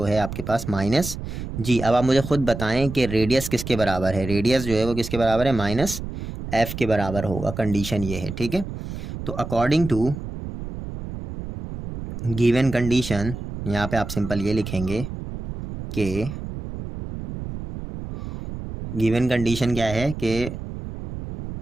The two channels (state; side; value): noise; right; rumble, 8 dB below the sound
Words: है आपके पास -g। अब आप मुझे खुद बताएं कि रेडियस किसके बराबर है। रेडियस जो है वो किसके बराबर है, -f के बराबर होगा। कंडीशन ये है। ठीक है, तो अकॉर्डिंग टू गिवन कंडीशन, यहाँ पे आप सिंपल ये लिखेंगे कि गिवन कंडीशन क्या है कि